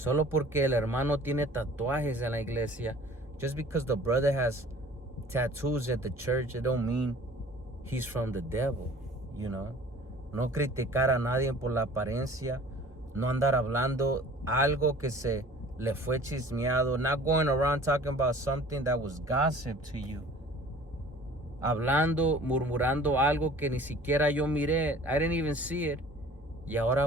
porque el hermano tiene tatuajes en la iglesia. Just because the brother has tattoos at the church, it don't mean he's from the devil, you know. No criticar a nadie por la apariencia. No andar hablando algo que se le fue chismeado. Not going around talking about something that was gossip to you. Hablando, murmurando algo que ni siquiera yo miré. I didn't even see it. Y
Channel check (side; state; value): both; normal; correlation 0.48